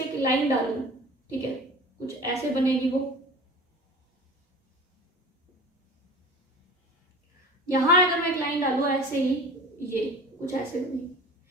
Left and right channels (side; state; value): both; normal; correlation 0.38